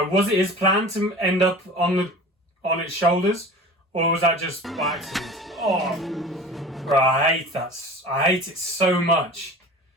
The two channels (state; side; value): normal; both; correlation 0.39